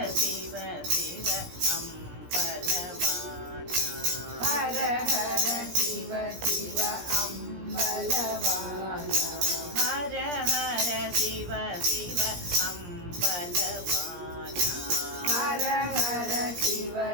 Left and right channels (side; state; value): left; late; 17 ms